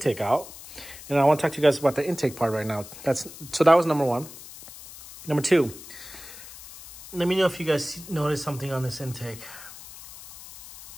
out. And I want to talk to you guys about the intake part right now. So that was number one. Number two, let me know if you guys noticed something on this intake.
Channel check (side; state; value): left; noise; hiss, 16 dB below the sound